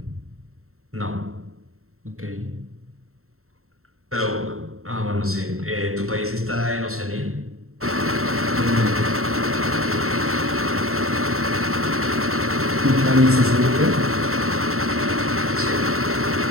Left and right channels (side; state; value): left; late; 0.63 ms